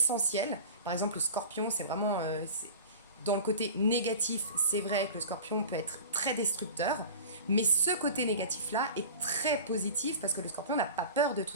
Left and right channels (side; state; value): both; inverted; correlation -0.36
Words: Par exemple, le scorpion, c'est vraiment... dans le côté négatif, c'est vrai que le scorpion peut être très destructeur, mais ce côté négatif-là est très positif parce que le scorpion n'a pas peur de